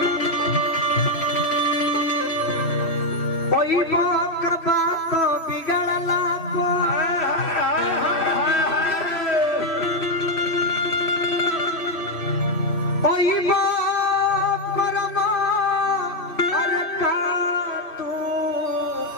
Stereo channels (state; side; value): late; right; 3.0 ms